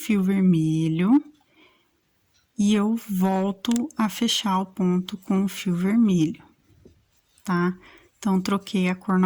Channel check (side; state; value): both; identical; correlation 1.00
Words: vermelho e eu volto a fechar o ponto com o fio vermelho, tá? Então, troquei a cor